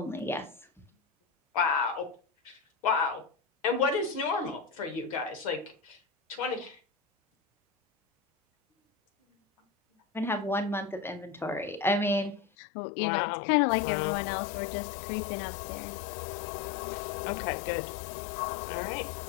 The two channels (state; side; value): drops out; right; at 12.5 s